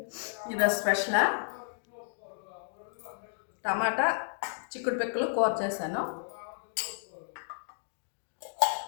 ఈరోజు స్పెషలా టమాటా చిక్కుడు పిక్కలు కూర చేశాను,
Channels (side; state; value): right; silent; digital silence